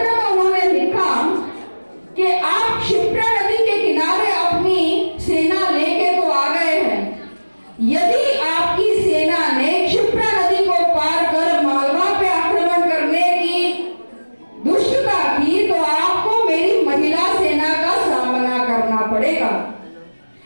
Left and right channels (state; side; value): inverted; both; correlation -1.00